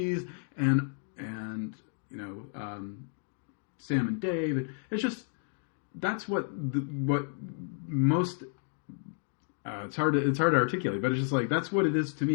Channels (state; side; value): silent; right; 57 dB below the other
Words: and Sam and Dave. And it's just that's what most. It's hard to articulate, but it's just like that's what it is to